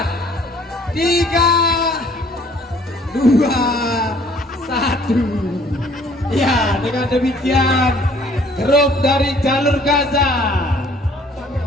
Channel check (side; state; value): both; normal; correlation 0.58